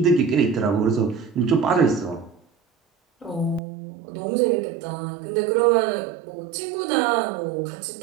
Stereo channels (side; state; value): left; drops out; at 3.6 s